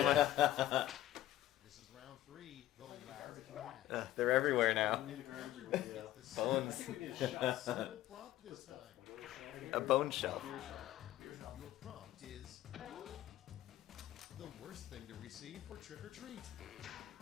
This is round three. The last match. They're everywhere now. It's the Bones. single prompt this time. A bone shelf. the worst thing to receive for trick or treat?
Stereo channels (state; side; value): quieter; right; 13.9 dB